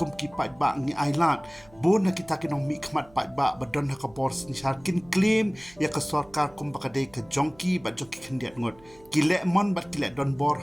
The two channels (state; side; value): noise; right; hum, 26 dB below the sound